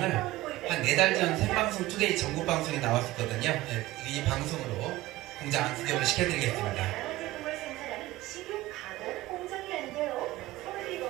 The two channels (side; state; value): left; quieter; 17.3 dB